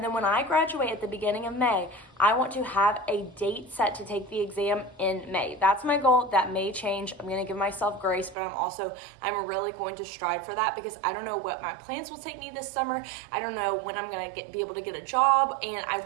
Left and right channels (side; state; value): left; drops out; at 8.3 s